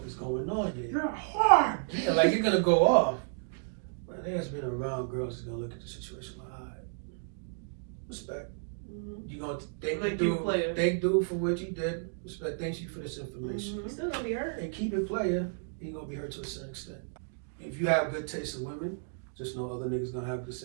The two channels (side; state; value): left; silent; digital silence